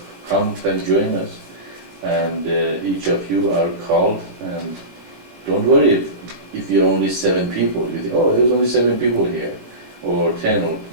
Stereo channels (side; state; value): left; late; 19 ms